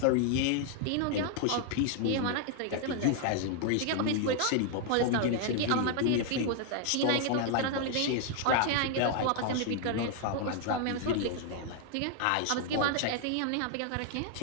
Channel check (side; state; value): both; different; correlation 0.00